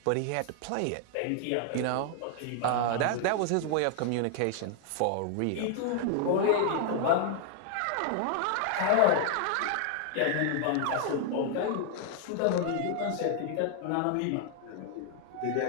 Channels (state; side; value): different; both; correlation 0.00